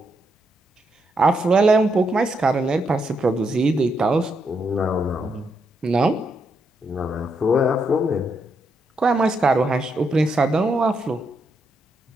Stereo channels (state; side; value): normal; both; correlation 0.79